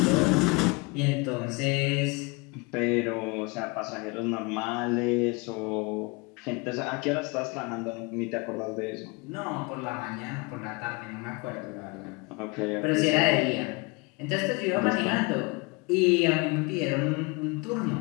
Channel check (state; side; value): quieter; right; 27.5 dB